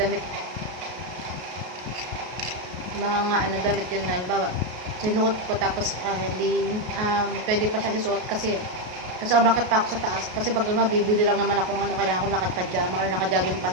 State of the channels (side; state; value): left; late; 33 ms